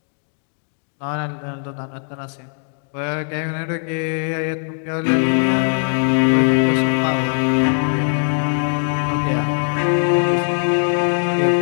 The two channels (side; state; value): right; silent; digital silence